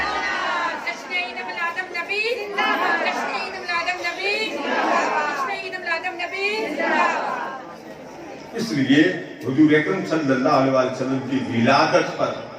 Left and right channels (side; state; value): both; identical; correlation 1.00